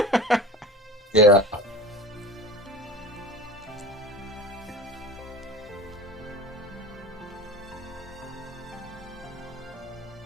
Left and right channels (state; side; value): normal; both; correlation 0.35